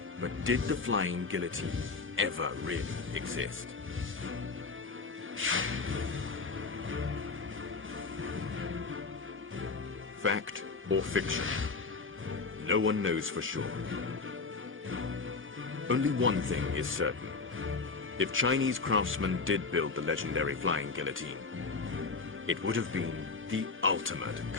But did the flying guillotine ever really exist? Fact or fiction? No one knows for sure. Only one thing is certain. If Chinese craftsmen did build the legendary flying guillotine, it would have been the ultimate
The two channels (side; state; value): right; quieter; 4.3 dB